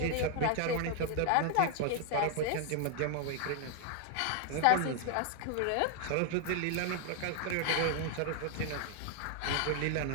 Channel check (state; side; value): different; both; correlation 0.00